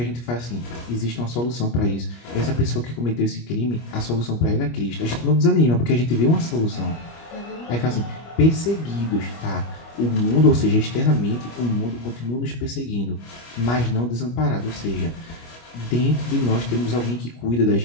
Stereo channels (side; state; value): right; late; 25 ms